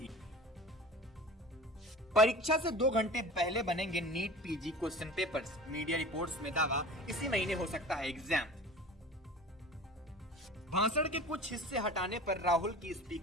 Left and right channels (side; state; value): both; normal; correlation 0.38